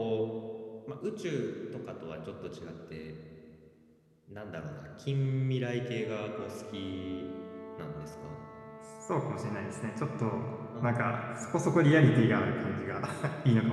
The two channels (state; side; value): identical; both; correlation 1.00